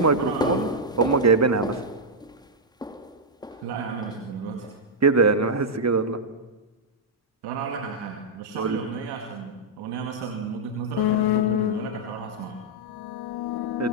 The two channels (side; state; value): both; normal; correlation -0.06